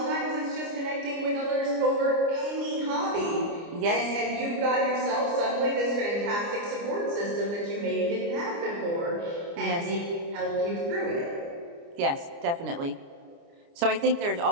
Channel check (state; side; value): late; left; 29 ms